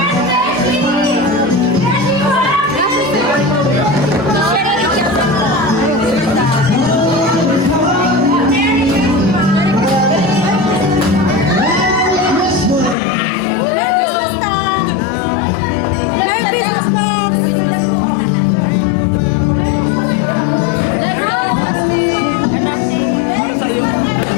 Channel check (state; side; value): drops out; right; at 13.0 s